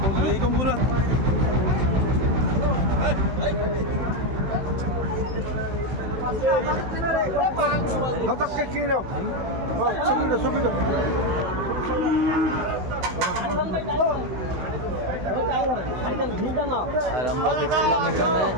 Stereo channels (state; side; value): late; left; 16 ms